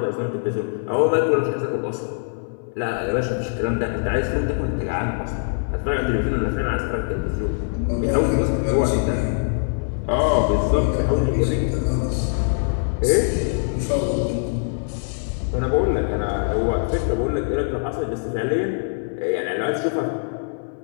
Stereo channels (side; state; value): right; silent; digital silence